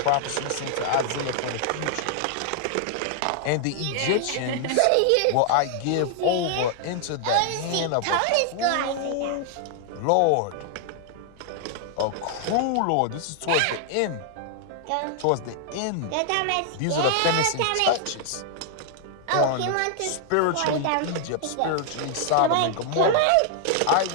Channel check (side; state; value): both; different; correlation 0.00